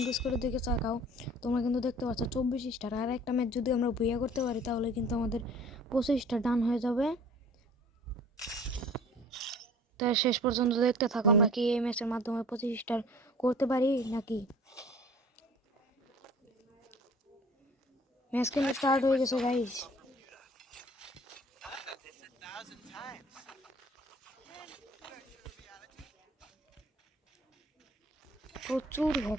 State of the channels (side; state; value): both; normal; correlation 0.48